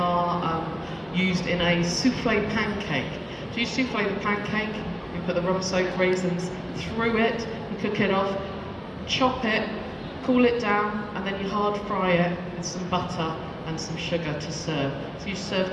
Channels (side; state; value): both; identical; correlation 1.00